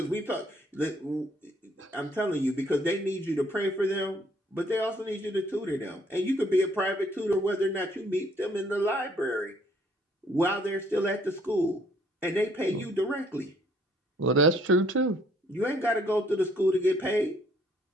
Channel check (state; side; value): normal; both; correlation 0.64